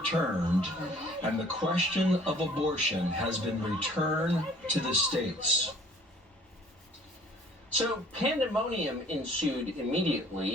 and the question of abortion has been returned to the states. So pandemonium ensued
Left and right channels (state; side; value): normal; both; correlation 0.54